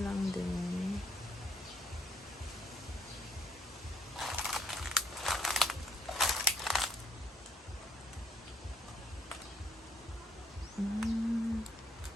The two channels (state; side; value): normal; both; correlation 0.66